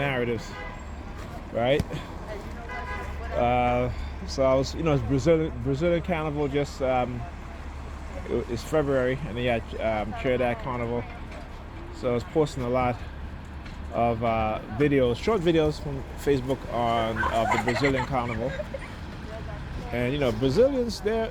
right? So I was, it's Brazilian Carnival just, it's February, and they had Trinidad Carnival. So I was posting a lot of videos, short videos from Facebook of the Brazilian Carnival. And Brazilians,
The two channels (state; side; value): identical; both; correlation 1.00